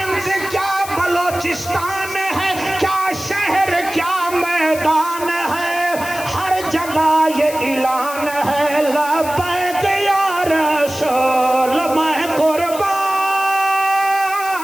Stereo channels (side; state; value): left; noise; hiss, 12 dB below the sound